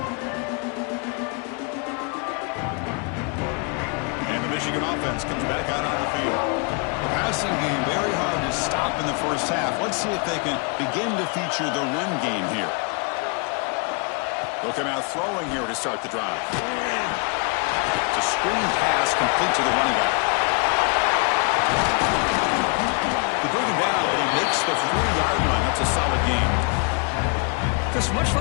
Michigan offense comes back out on the field. The passing game very hard to stop in the first half. Let's see if they can begin to feature the run game here. They'll come out throwing here to start the drive. It's a screen pass complete to the running back. They bring him down, but he makes the 40-yard line. That's a solid gain. Because much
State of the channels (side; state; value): right; quieter; 34.9 dB